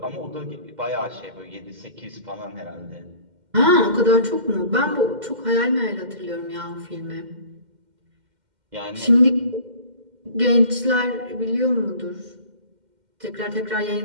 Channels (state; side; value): late; left; 2.1 ms